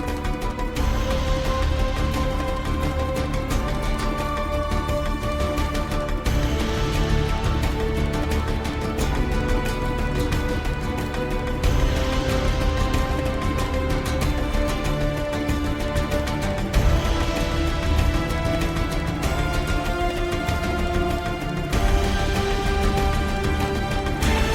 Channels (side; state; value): both; identical; correlation 1.00